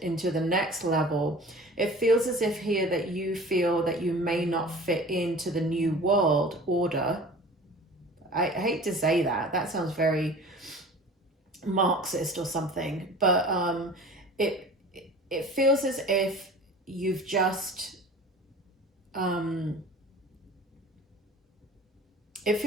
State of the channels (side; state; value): both; normal; correlation 0.42